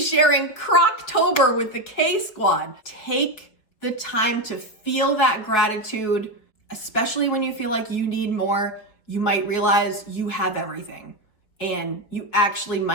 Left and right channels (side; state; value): right; late; 4.4 ms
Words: sharing Crocktober with the K Squad. Take the time to feel that gratitude, especially when you feel like you need more. You might realize you have everything, and you actually